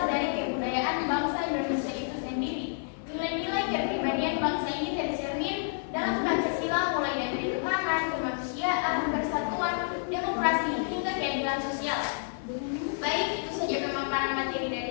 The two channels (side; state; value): right; silent; digital silence